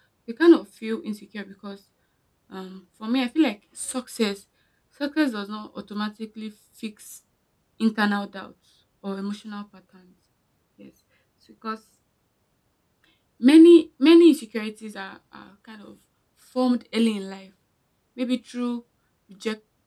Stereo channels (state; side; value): identical; both; correlation 1.00